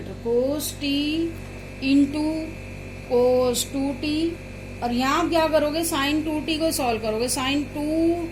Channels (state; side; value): identical; both; correlation 1.00